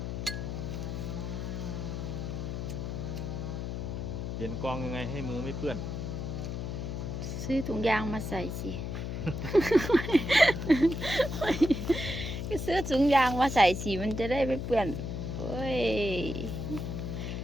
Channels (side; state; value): left; noise; hum, 4 dB below the sound